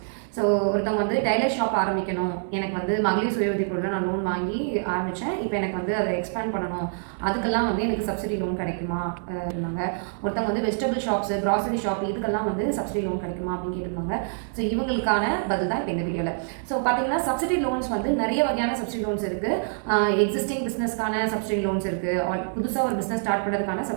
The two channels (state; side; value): silent; left; digital silence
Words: ஸோ ஒருத்தவங்க வந்து டைலர் ஷாப் ஆரம்பிக்கணும், எனக்கு வந்து மகளிர் சுய உதவி குழுவில் நான் லோன் வாங்கி ஆரம்பித்தேன், இப்போ எனக்கு வந்து அதை எக்ஸ்பேண்ட் பண்ணணும், அதுக்கெல்லாம் வந்து எனக்கு சப்சிடி லோன் கிடைக்குமா இருந்தாங்க. ஒருத்தவங்க வந்து வெஜிடபிள் ஷாப்ஸு, கிராசரி ஷாப், இதுக்கெல்லாம் வந்து சப்சிடி லோன் கிடைக்குமா அப்படின்னு கேட்டிருந்தாங்க. ஸோ இவங்களுக்கான பதில் தான் இப்போ இந்த வீடியோவில். ஸோ பார்த்தீங்கன்னா சப்சிடி லோன்ஸ் வந்து நிறைய வகையான சப்சிடி லோன்ஸ் இருக்குது. எக்ஸிஸ்டிங் பிஸ்னஸ்க்கான சப்சிடி லோன்ஸ் இருக்குது, புதுசாக ஒரு பிஸ்னஸ் ஸ்டார்ட் பண்ணுறதுக்கான